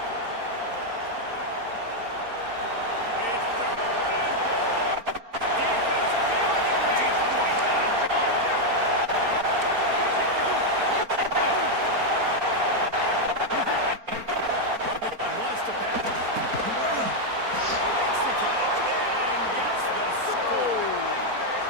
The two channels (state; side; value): late; left; 4.3 ms